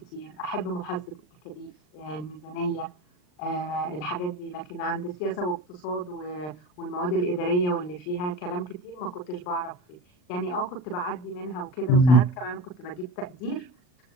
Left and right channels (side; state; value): right; late; 39 ms